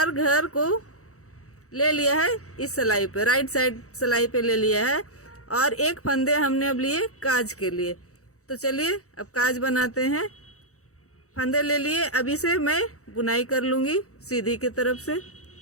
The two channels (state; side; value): late; right; 0.65 ms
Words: घर को ले लिया है इस सिलाई पे, राइट साइड सिलाई पे ले लिया है, और एक फंदे हमने अब लिए काज के लिए। तो चलिए अब काज बनाते हैं। फंदे ले लिए, अभी से मैं बुनाई कर लूँगी सीधी की तरफ से।